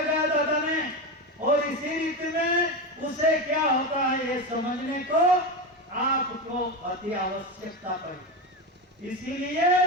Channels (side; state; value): both; normal; correlation 0.18